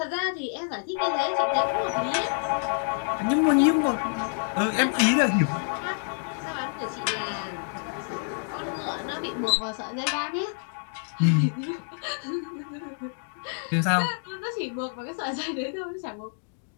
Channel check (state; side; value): silent; right; digital silence